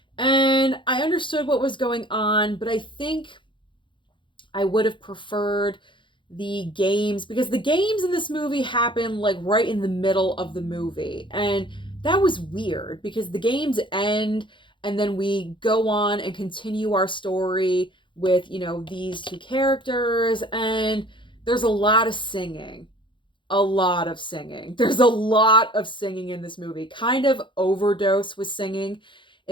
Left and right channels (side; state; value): right; late; 0.23 ms